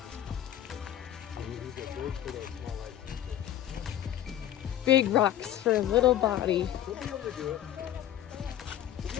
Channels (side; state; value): right; quieter; 11.8 dB